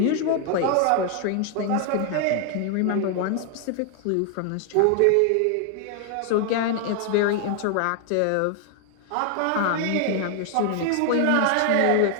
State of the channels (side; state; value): both; different; correlation 0.00